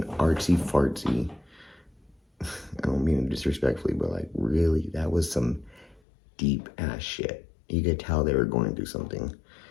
artsy-fartsy. I don't mean it disrespectfully, but like really, that was some deep-ass shit. You could tell they were going through something.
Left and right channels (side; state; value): right; drops out; at 6.0 s